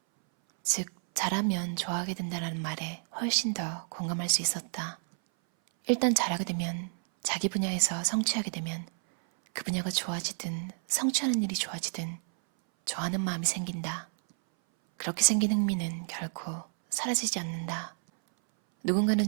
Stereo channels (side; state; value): left; silent; 58 dB below the other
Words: 즉 잘하면 좋아하게 된다는 말에 훨씬 더 공감할 수 있었다. 일단 잘하게 되면, 자기 분야에서 성취하게 되면 그 분야가 좋아지든 성취하는 일이 좋아지든 좋아하는 마음이 생긴다. 그렇게 생긴 흥미는 결코 사라지지 않는다. 누군가는